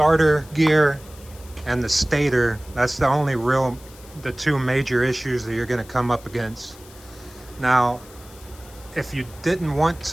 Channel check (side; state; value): left; noise; hiss, 22 dB below the sound